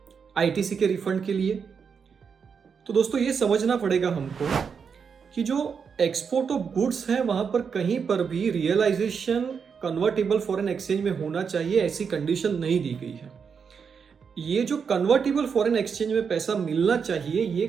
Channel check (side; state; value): left; quieter; 6.3 dB